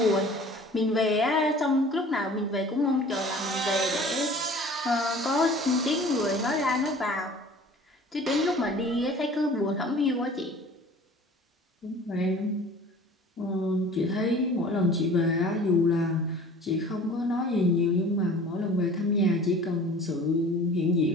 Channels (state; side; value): normal; both; correlation 0.46